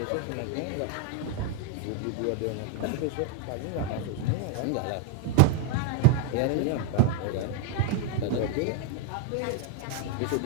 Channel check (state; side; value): different; both; correlation 0.01